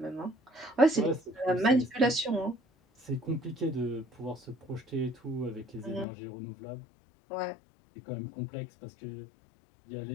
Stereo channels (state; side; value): drops out; right; at 6.1 s